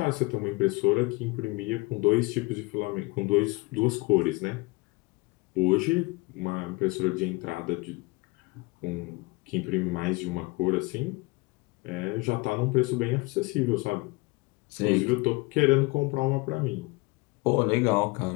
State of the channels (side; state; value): right; quieter; 24.5 dB